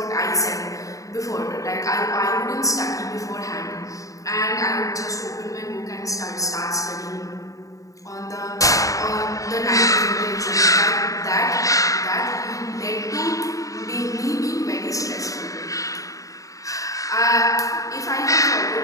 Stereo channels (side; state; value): right; late; 0.16 ms